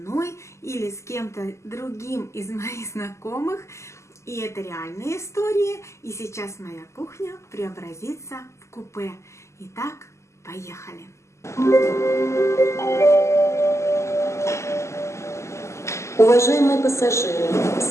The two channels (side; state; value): right; late; 0.13 ms